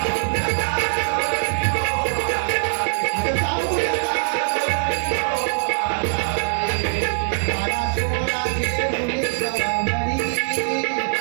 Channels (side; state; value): left; silent; digital silence